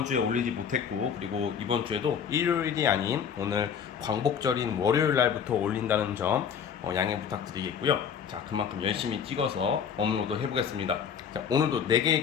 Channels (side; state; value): right; quieter; 7.5 dB